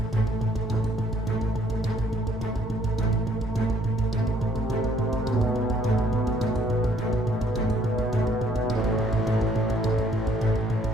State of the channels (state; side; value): normal; both; correlation 0.64